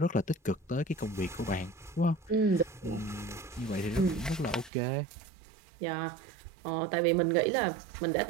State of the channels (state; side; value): drops out; left; at 4.7 s